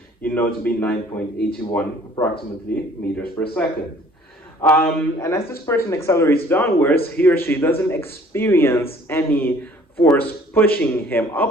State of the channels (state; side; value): normal; both; correlation 0.55